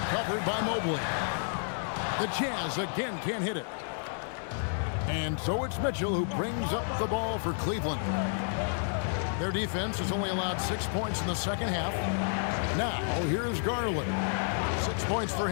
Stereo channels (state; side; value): silent; right; digital silence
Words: Covered by Mobley. The Jazz again can't hit it. And so it's Mitchell who brings up the ball for Cleveland. Their defense has only allowed 6 points in the second half. Now, here's Garland. 6 points for